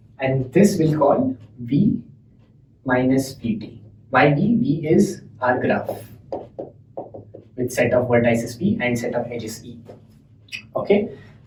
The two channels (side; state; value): both; identical; correlation 1.00